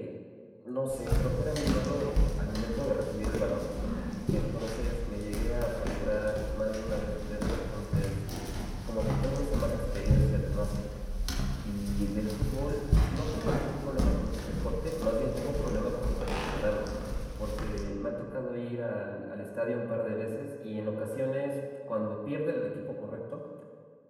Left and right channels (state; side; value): identical; both; correlation 1.00